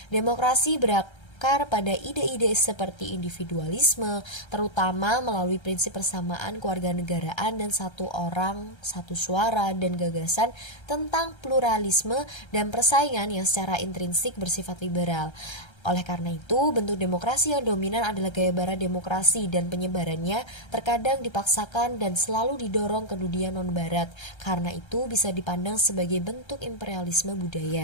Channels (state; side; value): late; right; 1.3 ms